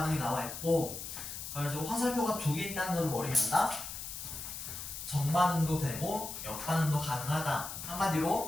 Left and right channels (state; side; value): noise; left; hiss, 8 dB below the sound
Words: 나와 있고, 그래가지고 화살표가 두 개 있다는 걸 머리에 한다? 정반응도 되고 역반응도 가능하다.